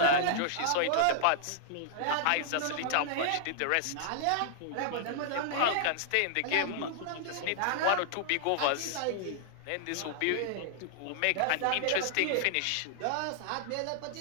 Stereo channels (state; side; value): different; both; correlation -0.01